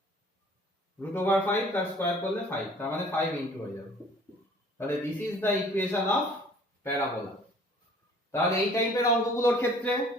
root over 5 তার square করলে 5, তার মানে 5 ইনটু হয়ে যাবে। তাহলে this is the equation of parabola। তাহলে এই টাইপের অঙ্কগুলোর ক্ষেত্রে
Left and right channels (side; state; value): both; normal; correlation 0.53